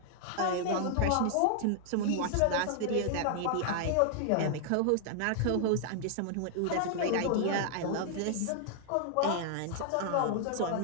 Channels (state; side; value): different; both; correlation -0.01